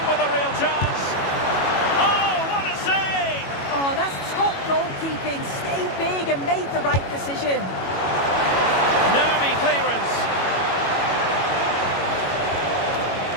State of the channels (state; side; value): late; right; 22 ms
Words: with a real chance. Oh, what a save! Oh, that's top goalkeeping. Stayed big and made the right decision. Nervy clearance.